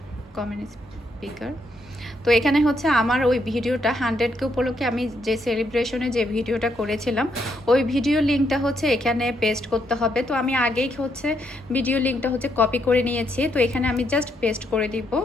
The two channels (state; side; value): normal; both; correlation 0.76